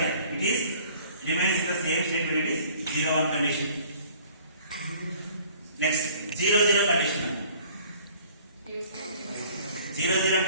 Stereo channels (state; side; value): inverted; both; correlation -0.53